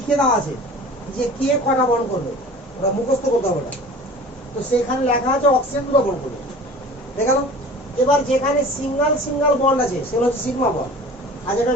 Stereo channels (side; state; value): both; normal; correlation 0.42